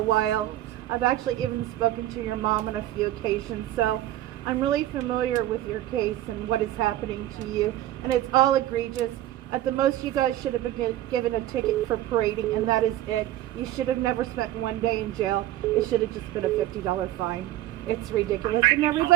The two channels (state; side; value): quieter; left; 14.0 dB